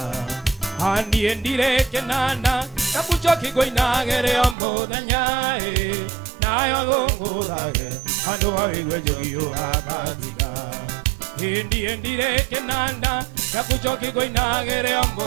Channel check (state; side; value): drops out; left; at 4.5 s